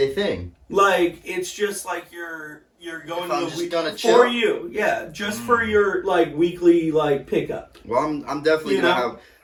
thing? Like, it's just like you're going to the week gonna chill? for you. Yeah, just for your like weekly like pickup. Well, I'm definitely gonna have.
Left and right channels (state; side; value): identical; both; correlation 1.00